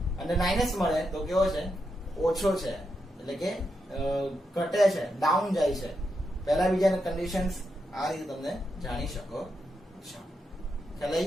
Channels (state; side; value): normal; both; correlation 0.84